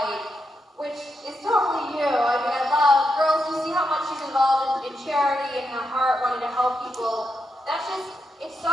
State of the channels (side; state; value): both; normal; correlation 0.84